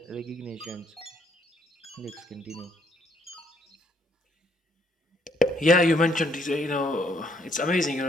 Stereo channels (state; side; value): normal; both; correlation 0.68